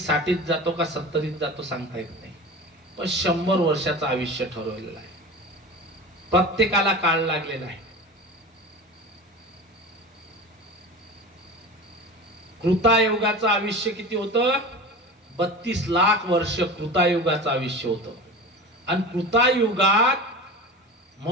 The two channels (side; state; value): both; normal; correlation 0.32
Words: जातो का 70त जातो सांगता येत नाही, पण 100 वर्षाचं आयुष्य ठरवलेलं आहे. प्रत्येकाला काळ लागलेला आहे. कृतायुगाचं आयुष्य किती होतं? 32 लाख वर्ष कृतायुगाचं आयुष्य होतं. आणि कृतायुगात